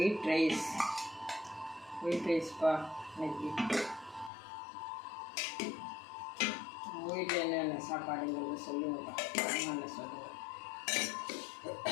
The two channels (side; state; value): right; drops out; at 4.3 s